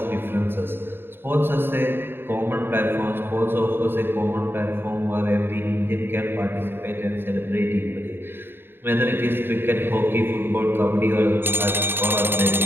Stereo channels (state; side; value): late; left; 0.10 ms